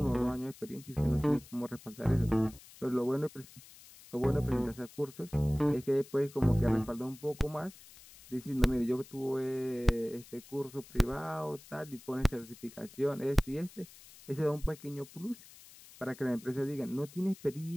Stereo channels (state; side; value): noise; left; hiss, 21 dB below the sound